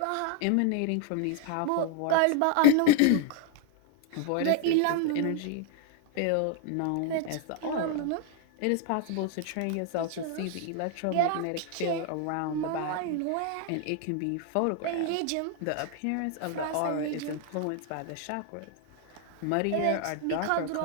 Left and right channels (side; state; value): both; different; correlation 0.00